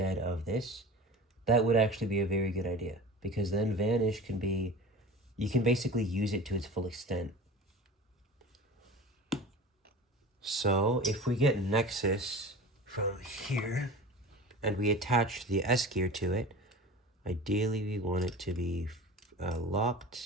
of this, that would actually be a very good idea. Because then Vanish can be, you can basically use it to its full extent. So, if we get Nexus from here, and we attach the S gear to it, ideally we want it to be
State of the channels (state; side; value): normal; both; correlation 0.36